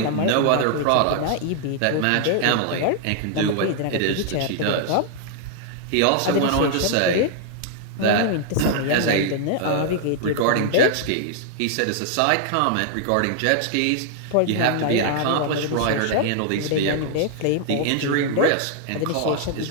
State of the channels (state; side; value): different; both; correlation 0.00